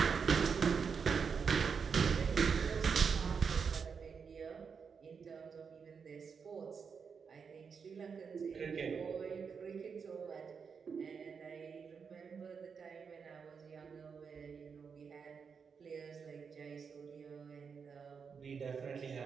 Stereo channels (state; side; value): quieter; left; 6.0 dB